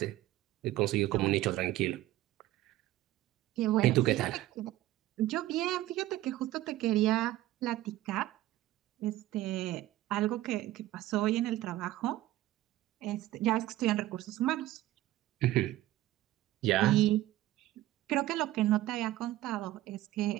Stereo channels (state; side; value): quieter; left; 15.4 dB